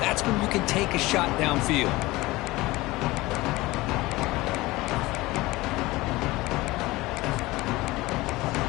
when you can take a shot downfield.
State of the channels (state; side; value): quieter; right; 20.1 dB